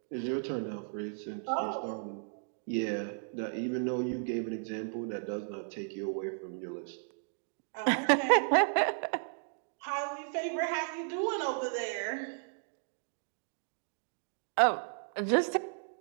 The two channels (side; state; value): left; silent; digital silence